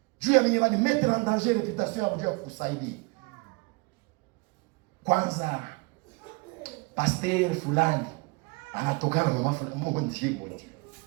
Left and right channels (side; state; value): left; quieter; 27.8 dB